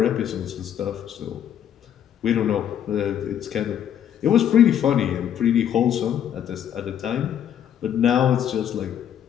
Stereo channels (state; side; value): quieter; right; 9.7 dB